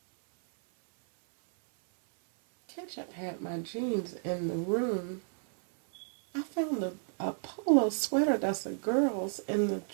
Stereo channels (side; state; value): left; silent; 56 dB below the other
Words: Ketchup had my jeans in the room. I found a polo sweater that's a girl's in the